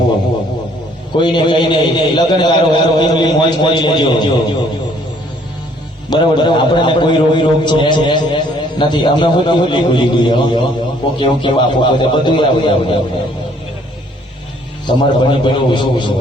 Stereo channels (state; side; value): normal; both; correlation 0.62